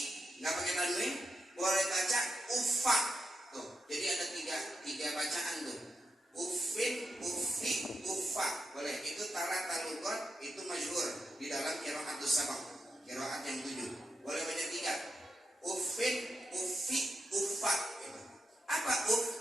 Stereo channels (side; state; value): both; normal; correlation 0.86